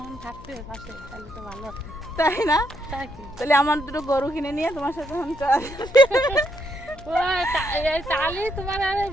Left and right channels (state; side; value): noise; left; hum, 19 dB below the sound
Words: থাকতে পাশে তাহলে তো ভালো হতো, তাই না? তাহলে আমার দুটো গরু কিনে নিয়ে তোমার সাথে এখন তাহলে তোমার আর